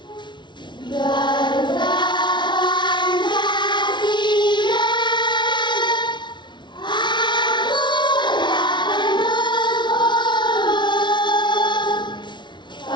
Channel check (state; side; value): late; right; 0.22 ms